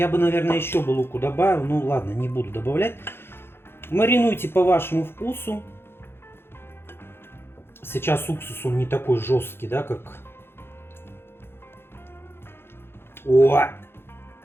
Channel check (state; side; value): late; right; 0.11 ms